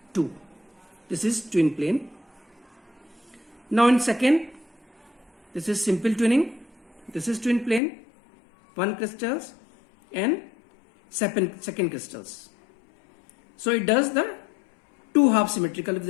two. This is twin plane. Now in second, this is simple twinning. This is twin plane, one crystals and second crystals. So it does the two half symmetrical with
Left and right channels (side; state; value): right; drops out; at 7.8 s